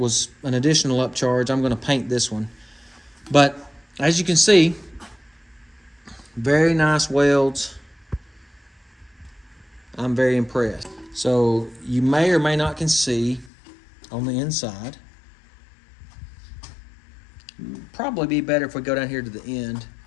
an additional upcharge. I'm going to paint this one. But as you can see, very nice welds. I'm very impressed. So you may or may not can see on the inside. Probably be better if we go down here to the end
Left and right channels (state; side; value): drops out; right; at 13.5 s